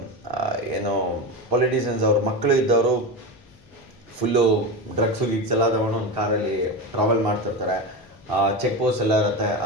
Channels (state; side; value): noise; left; hum, 29 dB below the sound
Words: ಏನು ಪೊಲಿಟಿಷಿಯನ್ಸ್ ಅವ್ರ ಮಕ್ಕಳು ಇದ್ದವರು ಫುಲ್ಲು ಡ್ರಗ್ಸು ಗಿಗ್ಸ್ ಎಲ್ಲ ತಗೊಂಡು ಒಂದು ಕಾರಲ್ಲಿ ಟ್ರಾವೆಲ್ ಮಾಡ್ತಿರ್ತಾರೆ. ಚೆಕ್ ಪೋಸ್ಟ್ ಎಲ್ಲ ಇರುತ್ತೆ.